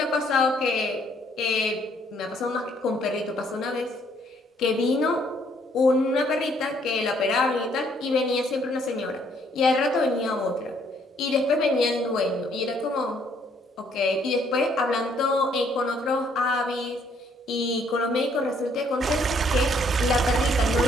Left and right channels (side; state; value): both; normal; correlation 0.66